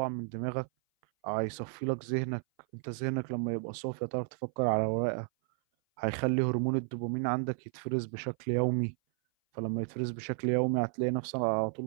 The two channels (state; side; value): silent; left; 56 dB below the other